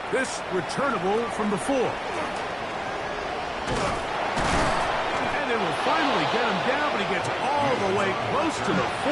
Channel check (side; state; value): both; identical; correlation 1.00